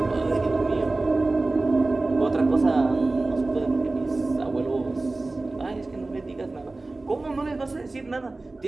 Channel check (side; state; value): left; quieter; 3.2 dB